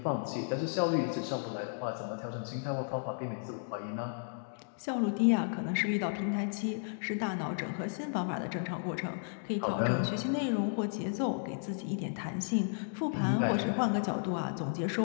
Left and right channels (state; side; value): silent; right; digital silence